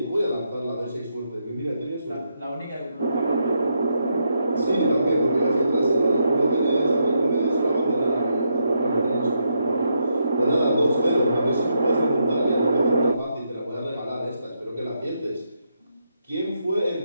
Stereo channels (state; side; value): inverted; both; correlation -0.80